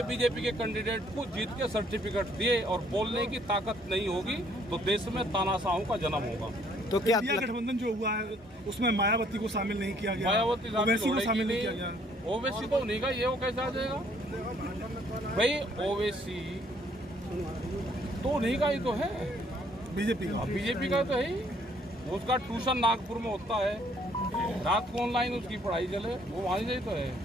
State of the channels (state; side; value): normal; both; correlation 0.64